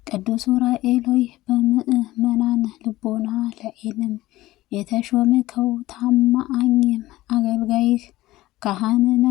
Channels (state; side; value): quieter; right; 17.1 dB